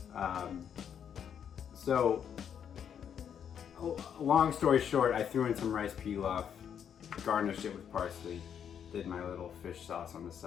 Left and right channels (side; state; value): right; quieter; 8.3 dB